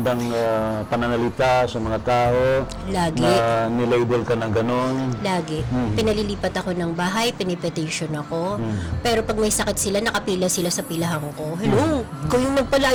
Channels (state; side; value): identical; both; correlation 1.00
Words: pananalita sa mga tao? Lagi. Na nilabel ka ng ganon? Lagi. Pinalilipat ako ng bahay, pinipetition ako. Pero pag may sakit sila, nakapila sila sa pilahan ko. Hello, ikaw yung